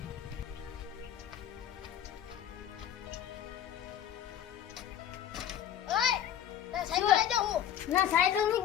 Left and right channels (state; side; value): quieter; right; 10.1 dB